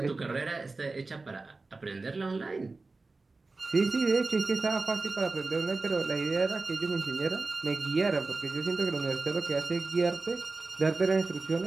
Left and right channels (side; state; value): left; quieter; 3.6 dB